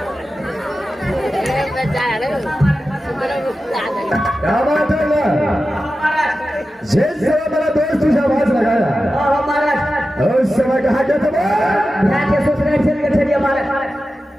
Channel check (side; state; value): both; normal; correlation 0.93